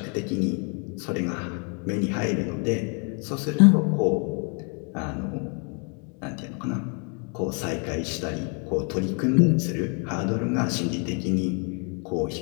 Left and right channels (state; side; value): quieter; right; 37.3 dB